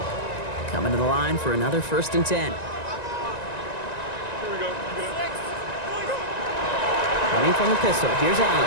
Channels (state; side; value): late; right; 1.9 ms